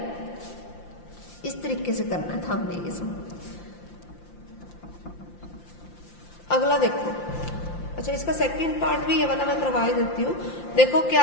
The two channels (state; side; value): late; right; 5.8 ms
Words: इस तरीके से करना था हमने ये सब। अगला देखो, अच्छा इसका सेकंड पार्ट भी ये वाला मैं करवा देती हूँ। देखो